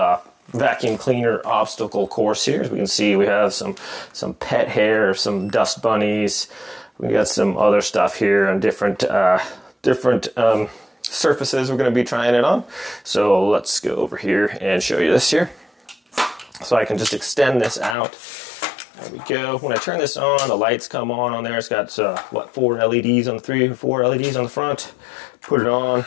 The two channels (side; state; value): right; drops out; at 17.9 s